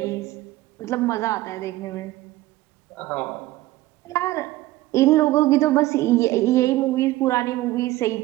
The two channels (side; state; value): left; quieter; 17.2 dB